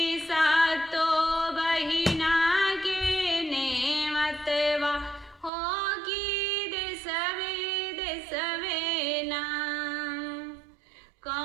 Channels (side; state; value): left; drops out; at 5.5 s